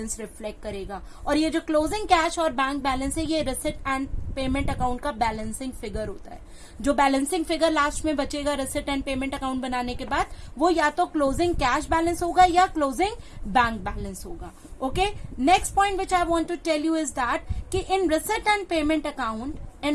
रिफ्लेक्ट करेगा. और ये जो क्लोजिंग कैश और बैंक बैलेंस है, ये रिसिट एंड पेमेंट अकाउंट का बैलेंसिंग फिगर होता है. जो बैलेंसिंग फिगर लास्ट में बचेगा रिसिट एंड पेमेंट अकाउंट बनाने के बाद, वो या तो क्लोजिंग कैश बैलेंस होगा या क्लोजिंग बैंक बैलेंस होगा. Okay, next point which I want to tell you is that कि in receipt and payment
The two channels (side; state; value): both; identical; correlation 1.00